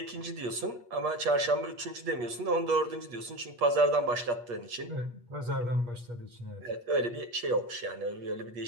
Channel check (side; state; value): left; late; 8.3 ms